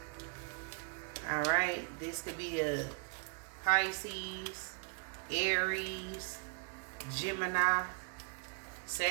Alright, this could be a Pisces, Aries, Gemini,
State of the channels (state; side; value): quieter; left; 37.9 dB